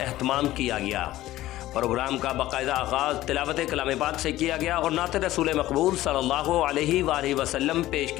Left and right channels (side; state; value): right; quieter; 15.5 dB